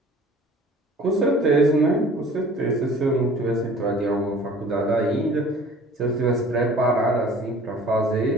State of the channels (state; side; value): normal; both; correlation 0.48